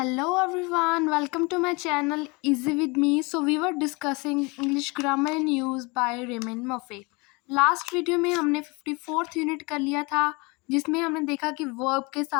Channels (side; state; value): right; quieter; 27.5 dB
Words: everyone, welcome to my channel Easy with me. So we were discussing English grammar and use by Raymond Murphy. Last video में हमने 54th unit कर लिया था जिसमें हमने देखा कि वर्ब के